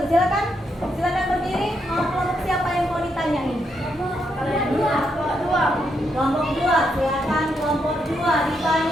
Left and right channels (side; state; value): both; normal; correlation 0.79